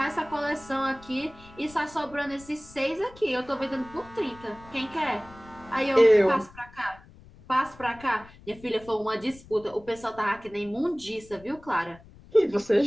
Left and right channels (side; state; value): left; noise; rumble, 22 dB below the sound